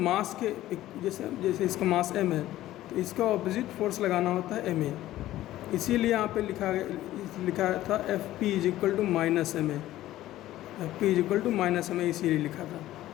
के जैसे इसका मास m है तो इसका ऑपोजिट फोर्स लगाना होता है ma। इसीलिए यहाँ पे लिखा था f p is equal to minus m a, f p is equal to minus m a इसीलिए लिखा था।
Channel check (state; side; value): quieter; right; 14.7 dB